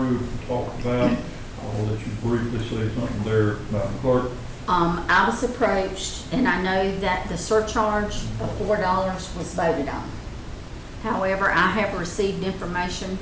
and talked about. I'll let you briefly say something there, Madam Clerk. I was approached, and I know that the surcharge of $4 was voted on. However, I have received information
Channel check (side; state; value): both; identical; correlation 1.00